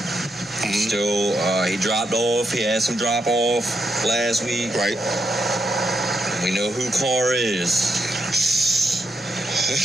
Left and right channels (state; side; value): normal; both; correlation 0.81